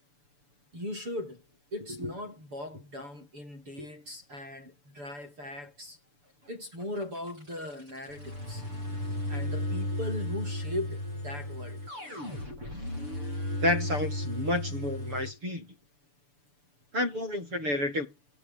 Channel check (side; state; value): left; late; 6.9 ms